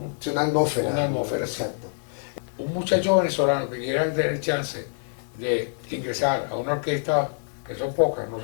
atmósfera. Una atmósfera, exacto. Un muchacho venezolano que quiera tener chance de ingresar a una orquesta, que son pocas, no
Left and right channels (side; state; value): right; silent; digital silence